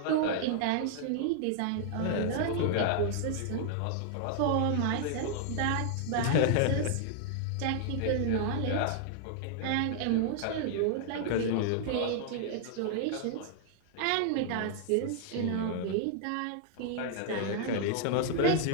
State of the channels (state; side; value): different; both; correlation 0.00